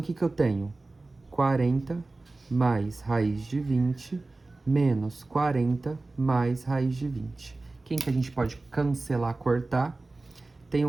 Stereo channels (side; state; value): left; quieter; 3.3 dB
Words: que eu tenho? 40 mais raiz de 20 menos 40 mais raiz de 20. Quem que a gente pode cancelar, cortar? Tem